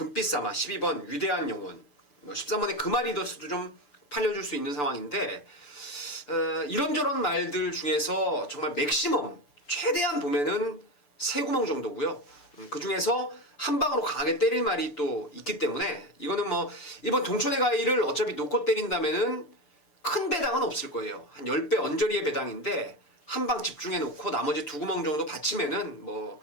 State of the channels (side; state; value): right; late; 6.8 ms